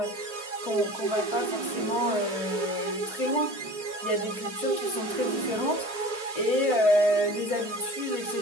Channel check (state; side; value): late; left; 3.4 ms